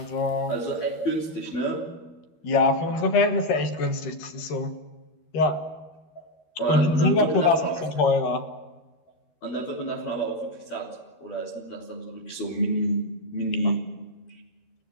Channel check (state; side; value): late; right; 12 ms